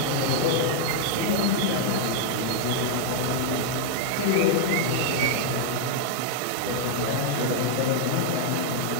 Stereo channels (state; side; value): different; both; correlation 0.00